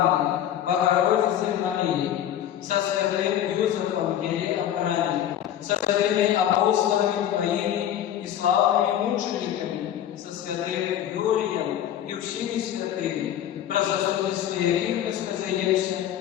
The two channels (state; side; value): quieter; right; 11.0 dB